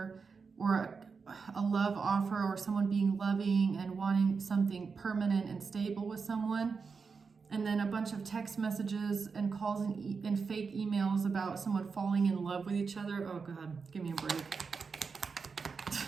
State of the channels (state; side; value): quieter; left; 5.1 dB